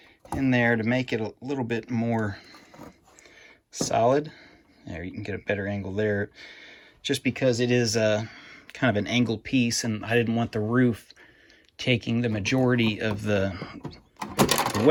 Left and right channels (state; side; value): identical; both; correlation 1.00